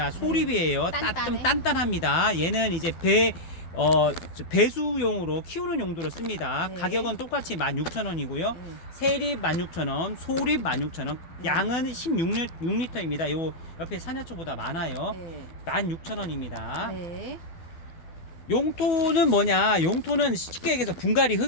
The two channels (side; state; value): right; late; 12 ms